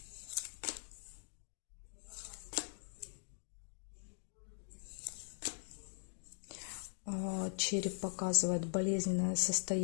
Череп показывает болезненное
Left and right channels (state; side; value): silent; right; digital silence